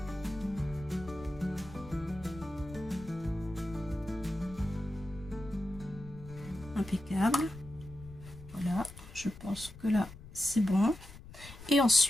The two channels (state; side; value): noise; left; rumble, 16 dB below the sound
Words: Impeccable. Voilà, je pense que là c'est bon. Et